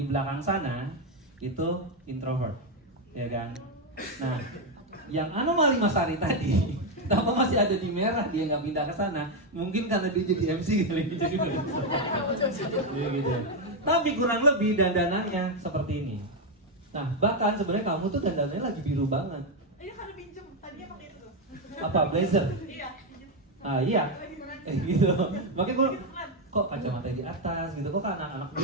belakang sana itu introvert, ya kan? Nah, yang anomali Mas Ari tadi, kenapa masih ada di merah dia nggak pindah ke sana? Mungkin karena dia jadi MC kali, jadi ya, gitu. Tapi kurang lebih dandanannya seperti ini. Nah, bahkan sebenarnya kamu tuh dandanannya lagi biru banget. Iya karena pinjem, tadinya pakai itu. Apa blazer? Iya. Ah iya, gitu. Makanya gue kok kacamata di atas gitu, kok anak-anak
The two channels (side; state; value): both; normal; correlation 0.05